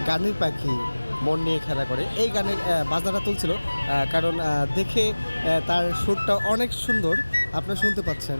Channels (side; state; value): both; inverted; correlation -1.00